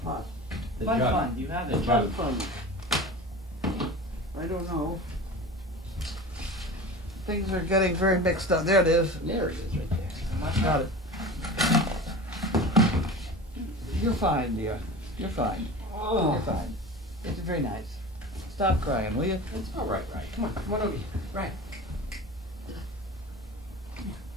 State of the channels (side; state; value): both; normal; correlation 0.34